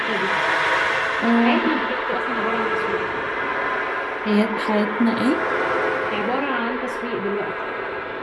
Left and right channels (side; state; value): both; identical; correlation 1.00